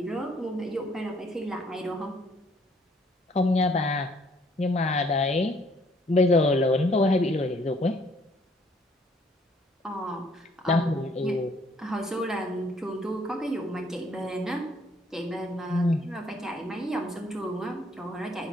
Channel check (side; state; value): both; normal; correlation 0.64